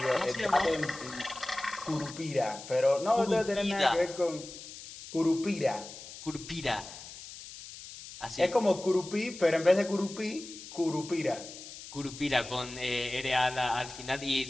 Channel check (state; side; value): noise; left; hiss, 14 dB below the sound